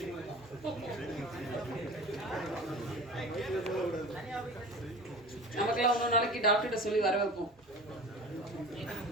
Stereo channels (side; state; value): both; normal; correlation 0.37